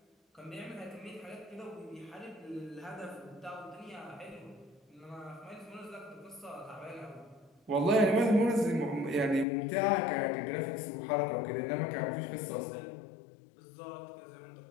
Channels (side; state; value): right; drops out; at 9.5 s